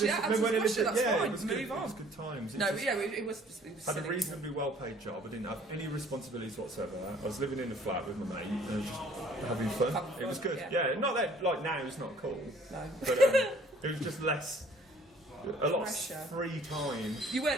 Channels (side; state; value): both; normal; correlation 0.56